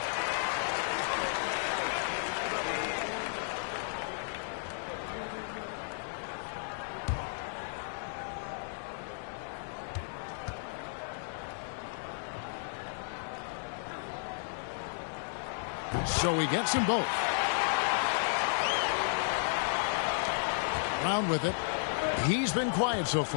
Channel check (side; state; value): right; silent; digital silence